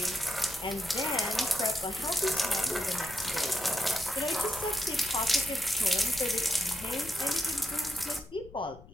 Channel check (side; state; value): left; noise; rumble, 19 dB below the sound